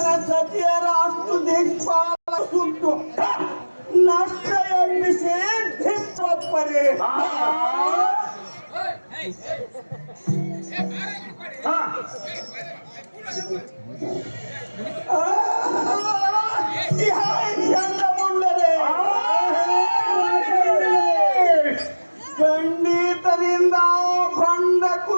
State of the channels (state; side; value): inverted; both; correlation -1.00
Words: ಸತಿಯರ ಅಷ್ಟು ದಿಕ್ಪಾಲ ಸುಟ್ಟು ನಷ್ಟ ಎಬ್ಬಿಸಿ ಧಿಪ್ಪರೆ ಮುಂಡರೆ ಖಂಡಿತದಿಂದ ಬಂಡ